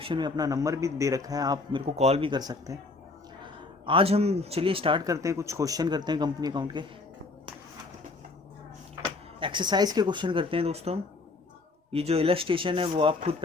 में अपना नंबर भी दे रखा है, आप मेरे को कॉल भी कर सकते हैं। आज हम चलिए स्टार्ट करते हैं, कुछ क्वेश्चन करते हैं कंपनी अकाउंट के। एक्सरसाइज के क्वेश्चन करते हैं दोस्तों हम। ये जो इलस्ट्रेशन है वो आप खुद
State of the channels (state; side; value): quieter; right; 3.6 dB